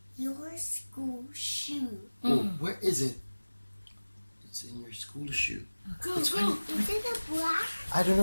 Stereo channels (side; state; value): both; inverted; correlation -1.00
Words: your school shoe. Oh, where is it? It's in your school shoe. Go, Let's go. find it. Is it a black? I don't